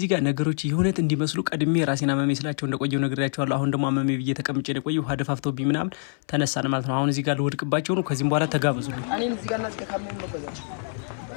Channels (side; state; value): right; silent; 62 dB below the other